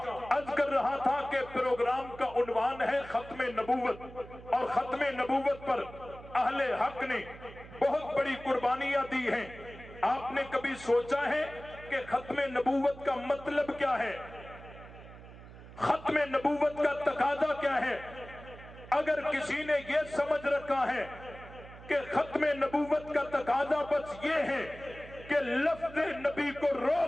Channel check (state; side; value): noise; right; hum, 17 dB below the sound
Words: अर्ज कर रहा था कि प्रोग्राम का उन्वान है खत्मे नबूवत, और खत्मे नबूवत पर अहले हक ने बहुत बड़ी कुर्बानियां दी हैं। आपने कभी सोचा है कि खत्मे नबूवत का मतलब क्या है? खत्मे नबूवत का तकाजा क्या है? अगर किसी ने यह समझ रखा है कि खत्मे नबूवत का तकाजा बस ये है कि लफ्ज़ नबी को